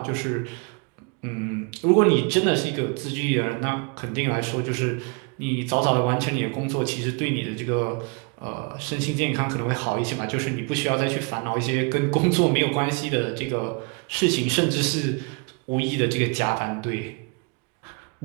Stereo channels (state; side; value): quieter; left; 32.7 dB